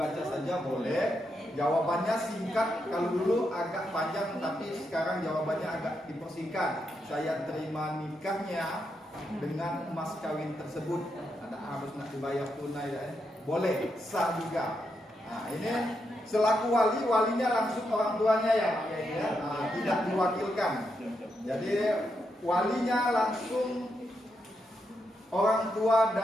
saja boleh. Jawabannya singkat, kalau dulu agak panjang tapi sekarang jawabannya agak dipersingkat. Saya terima nikahnya dengan emas kawin tersebut. Ada harus nak dibayar tunai ya. Boleh, sah juga. Nah, ini selaku walinya langsung orang tuanya ya, nah, tidak diwakilkan. Jadi walinya langsung orang tua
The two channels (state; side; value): normal; both; correlation 0.83